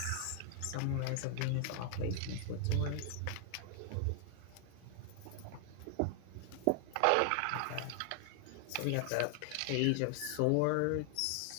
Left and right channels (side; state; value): both; different; correlation 0.00